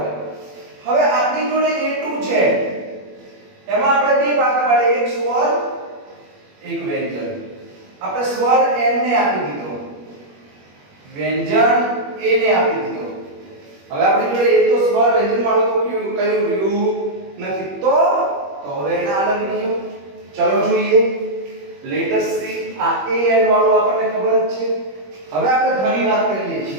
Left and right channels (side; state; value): left; late; 21 ms